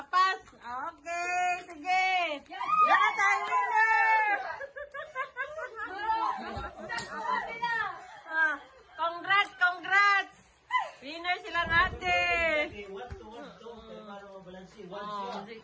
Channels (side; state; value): both; identical; correlation 1.00